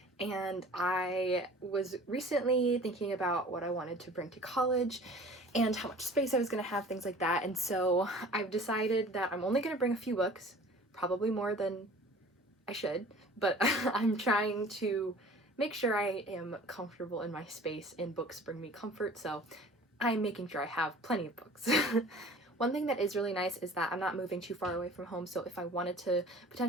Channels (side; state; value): both; normal; correlation 0.45